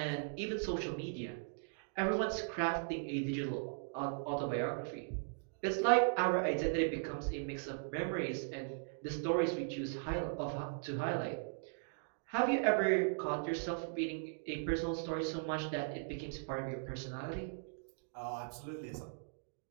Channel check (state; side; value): silent; left; digital silence